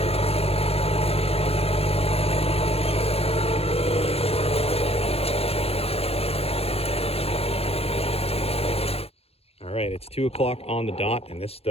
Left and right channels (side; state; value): right; late; 0.29 ms